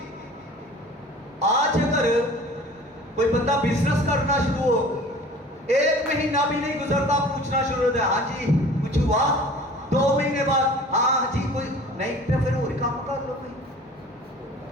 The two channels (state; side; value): normal; both; correlation 0.44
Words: आज अगर कोई बंदा बिजनेस करना शुरू हो, 1 महीना भी नहीं गुजरता पूछना शुरू होता है, हाँ जी कुछ हुआ, 2 महीने बाद हाँ जी कोई नहीं, तो फिर और काम कर लो कोई,